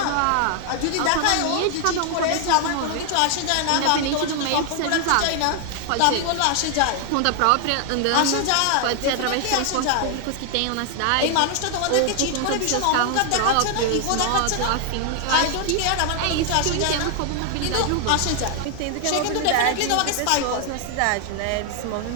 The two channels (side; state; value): both; different; correlation 0.00